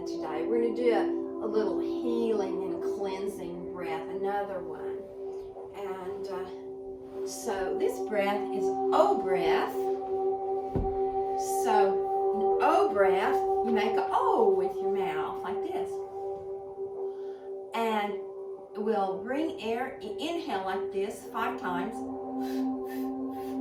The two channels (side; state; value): both; identical; correlation 1.00